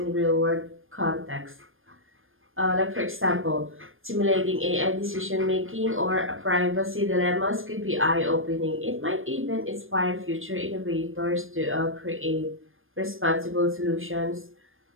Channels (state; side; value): late; left; 0.59 ms